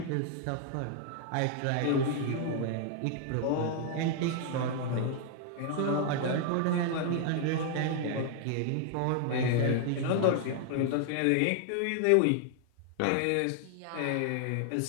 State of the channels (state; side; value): different; both; correlation 0.00